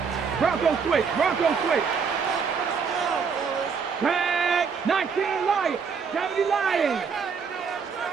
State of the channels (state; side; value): quieter; left; 5.9 dB